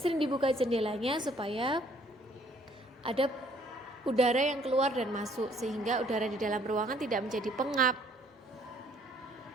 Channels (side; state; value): both; normal; correlation 0.61